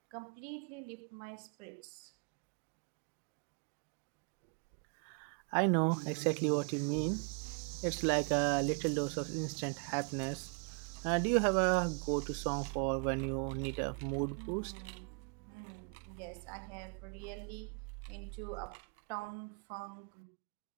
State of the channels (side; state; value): left; quieter; 38.3 dB